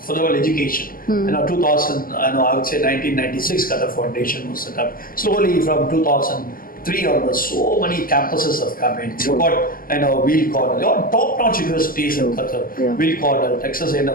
For example, education. 2000, I would say 1996, Qatar Foundation was set up. Slowly from 2003 onwards, so many campuses have come in. You've got, Wheel Cornell, top-notch universities in Qatar. Yeah. Wheel Cornell, Texas A&M,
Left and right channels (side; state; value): right; late; 0.42 ms